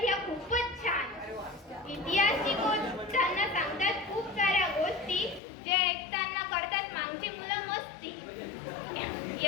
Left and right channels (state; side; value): drops out; right; at 5.4 s